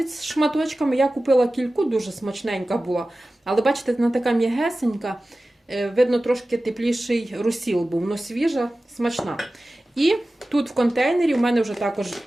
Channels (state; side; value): normal; both; correlation 0.96